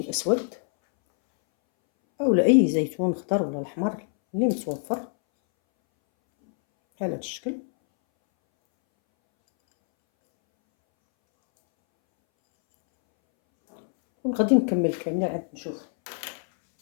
الاسود اولا اي زيتون خضر ولا الاحمر اللي متوفر بحال هذا الشكل. وغادي نكمل كامله عاد نشوف.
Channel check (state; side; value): silent; right; 62 dB below the other